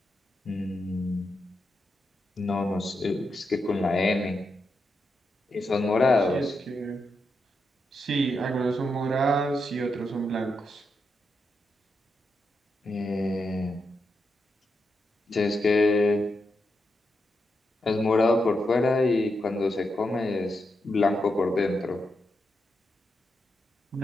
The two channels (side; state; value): both; normal; correlation 0.85